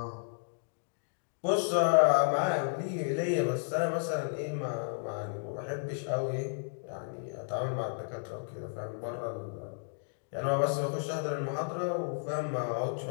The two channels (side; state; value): right; silent; digital silence